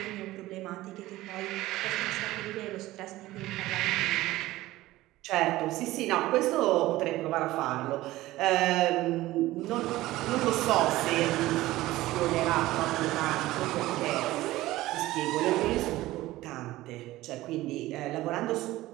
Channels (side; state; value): left; quieter; 17.1 dB